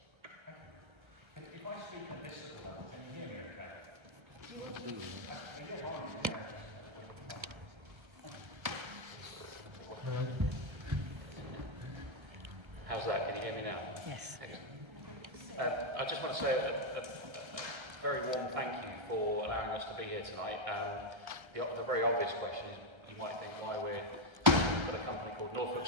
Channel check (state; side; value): late; left; 1.3 ms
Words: I just want to say a very warm thank you for allowing us to be here tonight. The very obvious question is, you might think why we're with a company called Norfolk